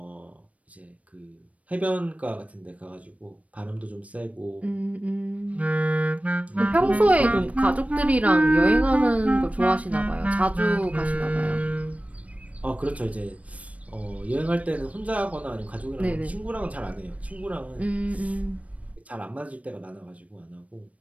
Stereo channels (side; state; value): left; late; 0.066 ms